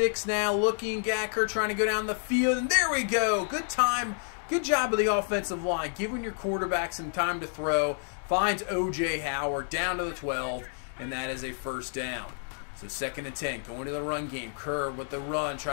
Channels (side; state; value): right; silent; 58 dB below the other